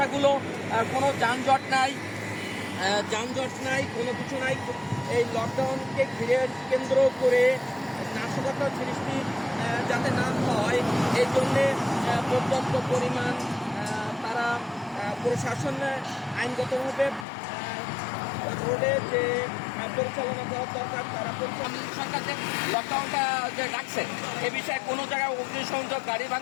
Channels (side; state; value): right; drops out; at 17.2 s